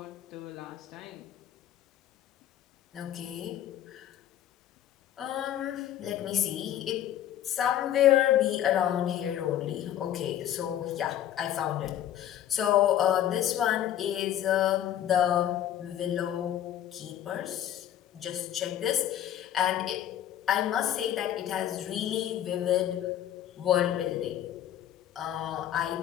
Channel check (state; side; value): quieter; right; 11.3 dB